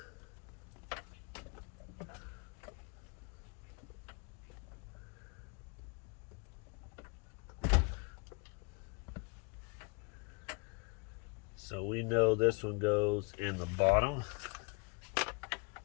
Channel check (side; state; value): right; quieter; 30.7 dB